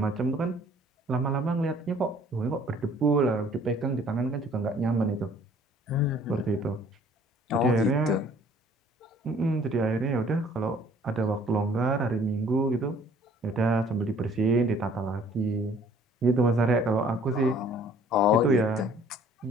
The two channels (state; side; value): normal; both; correlation 0.56